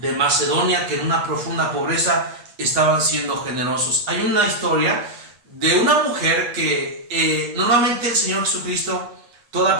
Macedonia, que en una profunda pobreza estaban siendo generosos. Hay una historia de una mujer que normalmente el Señor Jesucristo, toda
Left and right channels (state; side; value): late; left; 8.4 ms